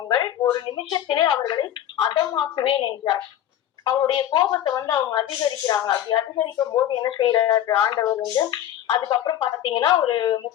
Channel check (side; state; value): right; quieter; 11.4 dB